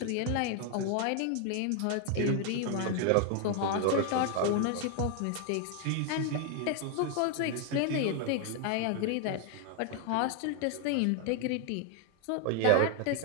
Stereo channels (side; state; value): both; different; correlation 0.00